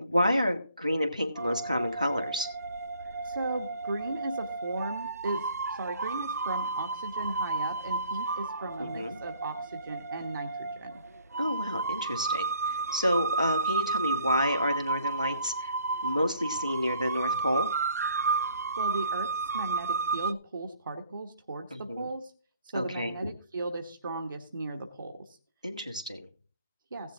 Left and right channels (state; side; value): inverted; both; correlation -0.59